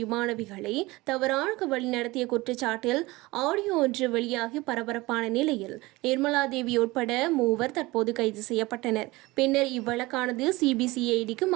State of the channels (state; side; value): quieter; left; 21.2 dB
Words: மாணவிகளை தவறாக வழிநடத்திய குற்றச்சாட்டில் ஆடியோ ஒன்று வெளியாகி பரபரப்பான நிலையில் நிர்மலா தேவி உட்பட 3 தற்போது கைது செய்யப்பட்டனர். பின்னர் இவ்வழக்கானது சிபிசிஐடிக்கு